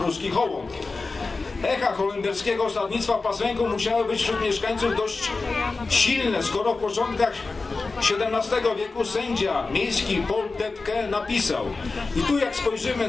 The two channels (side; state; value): right; quieter; 3.9 dB